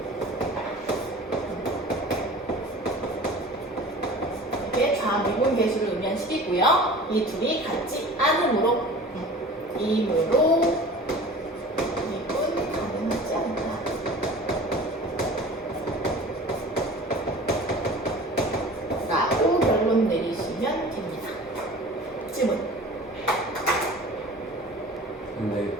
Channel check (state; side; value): normal; both; correlation 0.41